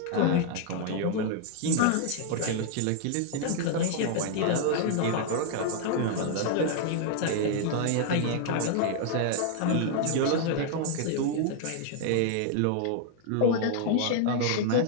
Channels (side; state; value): both; different; correlation 0.00